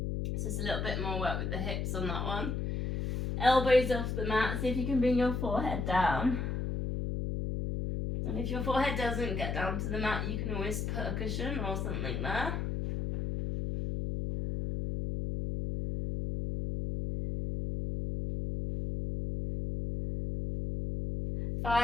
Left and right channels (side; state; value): left; noise; hum, 1 dB below the sound